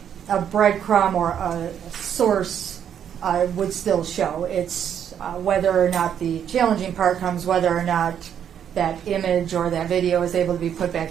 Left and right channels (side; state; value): left; quieter; 8.9 dB